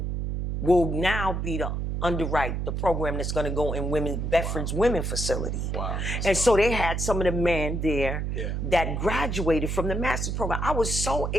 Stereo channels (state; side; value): noise; right; hum, 2 dB below the sound